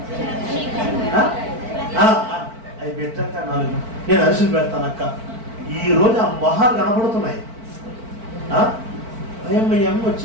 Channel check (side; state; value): left; late; 4.5 ms